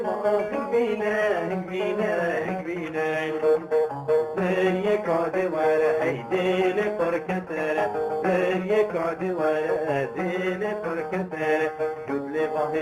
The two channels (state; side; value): identical; both; correlation 1.00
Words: هنبينا هنبينا هنبينا زيك عد ورا هيديل فركتر زيك عد ورا هيديل فركتر جود لي